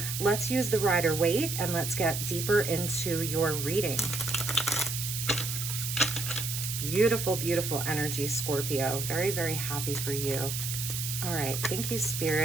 let's use the Rider-Waite and let's get deeper into your reading. Beautiful, beautiful energy, Scorpio. Very, very happy for you. All right. Thank you,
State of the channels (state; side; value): noise; right; hiss, 4 dB below the sound